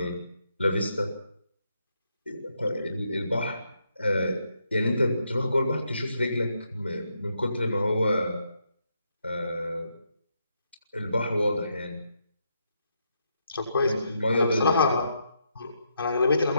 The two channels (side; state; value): both; inverted; correlation -0.79